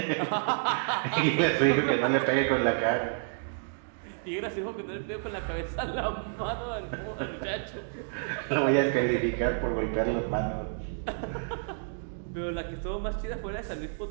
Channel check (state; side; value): silent; left; digital silence